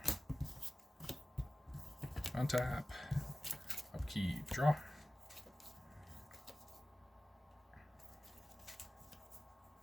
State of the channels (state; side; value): normal; both; correlation 0.95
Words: Untap. Upkeep. Draw.